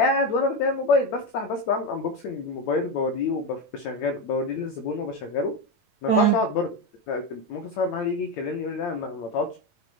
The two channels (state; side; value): late; right; 8.8 ms